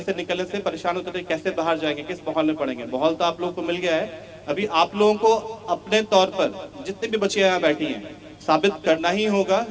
से निकलने से परेशान होते थे, कैसे बाहर जाएंगे, किस माहौल में पढ़ेंगे। माहौल तो आप लोगों को मिल गया है। अभी आप लोगों को अपने तौर पर जितने भी बच्चे यहाँ बैठी हैं, साबित करना ही होगा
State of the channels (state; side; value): identical; both; correlation 1.00